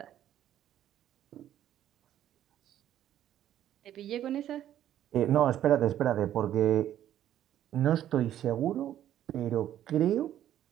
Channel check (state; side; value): quieter; left; 11.6 dB